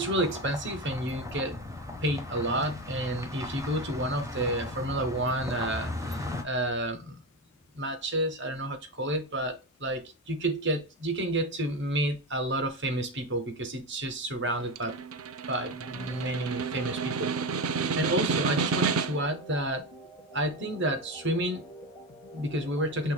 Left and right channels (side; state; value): both; normal; correlation 0.19